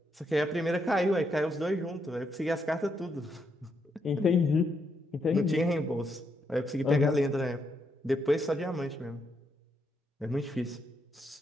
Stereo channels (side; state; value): both; normal; correlation 0.79